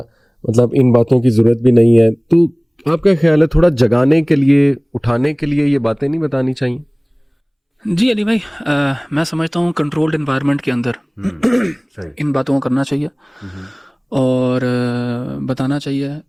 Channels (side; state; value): both; identical; correlation 1.00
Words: مطلب ان باتوں کی ضرورت بھی نہیں ہے. تو آپ کا خیال ہے تھوڑا جگانے کے لیے، اٹھانے کے لیے یہ باتیں نہیں بتانی چاہیے؟ جی علی بھائی، میں سمجھتا ہوں کنٹرولڈ انوائرمنٹ کے اندر ان باتوں کو کرنا چاہیے اور بتانا چاہیے